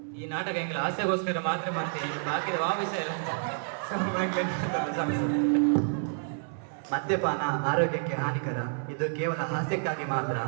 ಈ ನಾಟಕ ಎಂಕಲ್ ಹಾಸ್ಯಕ್ಕೋಸ್ಕರ ಮಾತ್ರ ಮತ್ತೆ ಬಾಕಿದ ಆ ವಿಷಯ ಮದ್ಯಪಾನ ಆರೋಗ್ಯಕ್ಕೆ ಹಾನಿಕರ ಇದು ಕೇವಲ ಹಾಸ್ಯಕ್ಕಾಗಿ ಮಾತ್ರ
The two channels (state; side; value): silent; left; 58 dB below the other